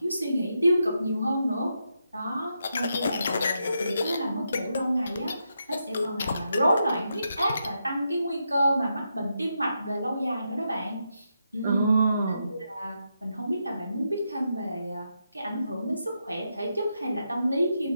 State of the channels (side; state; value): both; inverted; correlation -0.83